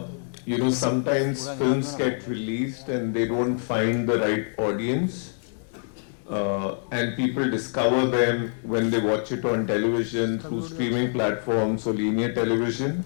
sometimes films get released and they don't find the right audience. And people discover them when they watch it on television, through streaming platforms or linear television.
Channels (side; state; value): right; silent; 61 dB below the other